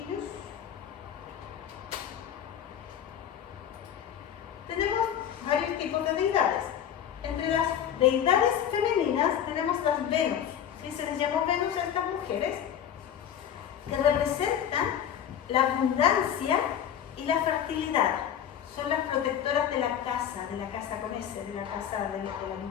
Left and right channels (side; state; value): right; quieter; 9.5 dB